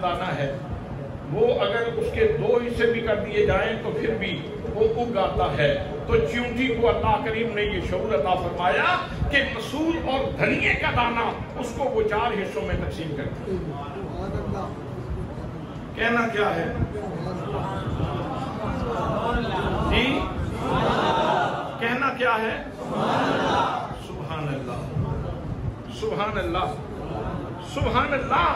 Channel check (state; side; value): identical; both; correlation 1.00